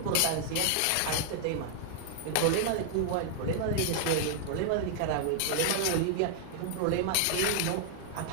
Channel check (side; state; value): both; different; correlation -0.01